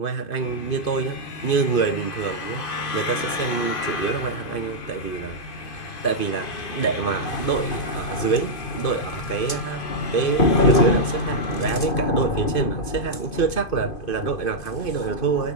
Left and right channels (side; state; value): right; late; 2.5 ms